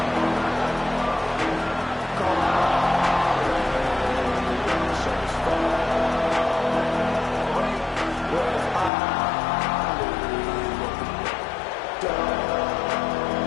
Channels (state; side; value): drops out; right; at 8.9 s